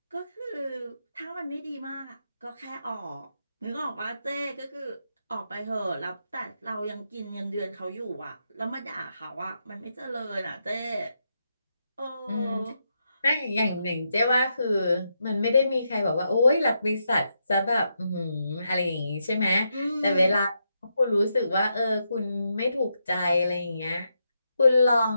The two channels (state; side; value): inverted; both; correlation -0.82